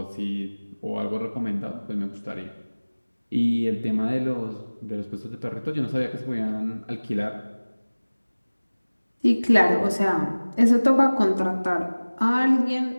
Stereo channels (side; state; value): both; inverted; correlation -1.00